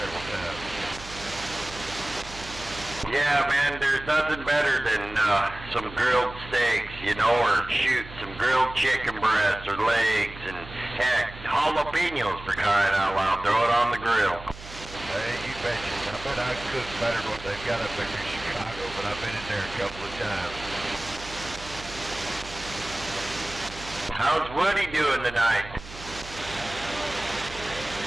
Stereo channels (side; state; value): right; noise; hum, 15 dB below the sound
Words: times. Yeah, man, there's nothing better than some grilled steaks, you know, or shoot some grilled chicken breasts or legs, and heck, jalapenos for crying out loud. Throw it on the grill. Hey, you betcha. I bet I cook better than what they've got up there in Chicago, but I've been in there a couple of times. How's Woody doing tonight?